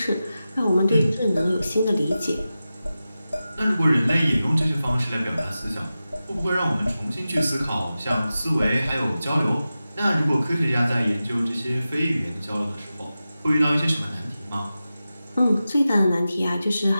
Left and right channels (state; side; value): inverted; both; correlation -0.94